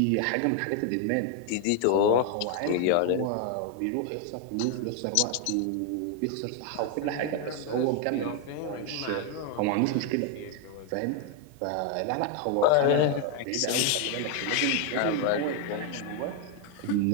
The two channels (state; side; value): different; both; correlation 0.01